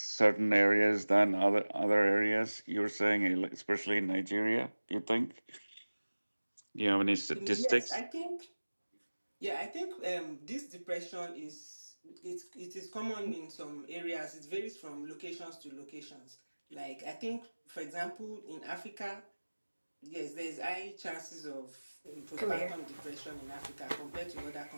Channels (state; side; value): inverted; both; correlation -1.00